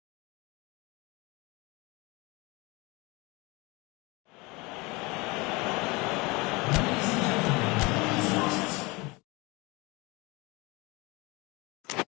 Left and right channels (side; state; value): right; quieter; 25.0 dB